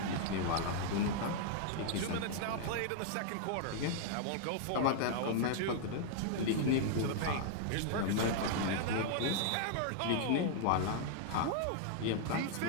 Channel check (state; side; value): different; both; correlation -0.01